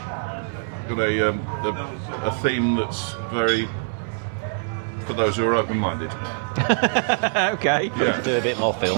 a theme that's very... for those who are open-minded. Okay. Yeah. Do a bit more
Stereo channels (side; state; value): left; silent; digital silence